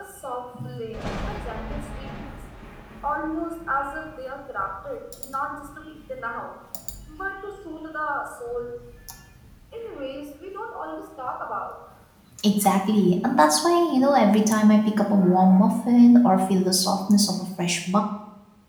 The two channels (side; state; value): both; identical; correlation 1.00